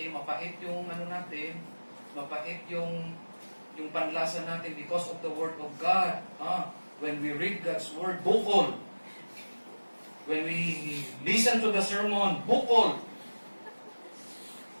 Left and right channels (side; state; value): both; inverted; correlation -1.00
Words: mapait yung natin, mapait yung panlasa natin because of the Word of God. When we read God's Word, bukol. When we listen to the sermon, bukol.